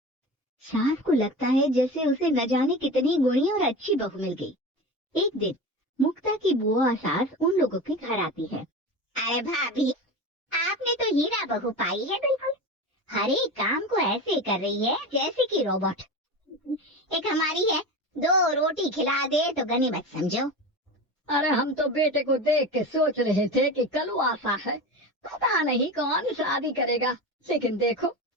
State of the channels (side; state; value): both; normal; correlation 0.27